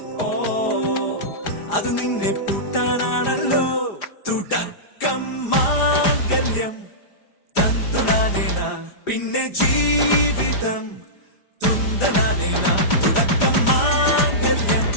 അത് നിന്നെ പൂട്ടാനാണല്ലോ തുടക്കം മാംഗല്യം തന്തുനാനേന പിന്നെ ജീവിതം തുന്തനാനേന തുടക്കം മാംഗല്യം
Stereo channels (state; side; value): late; right; 4.9 ms